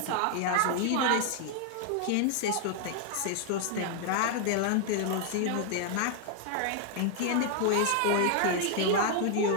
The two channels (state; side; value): different; both; correlation 0.00